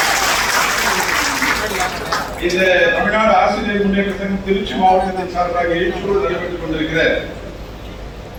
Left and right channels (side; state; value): both; identical; correlation 1.00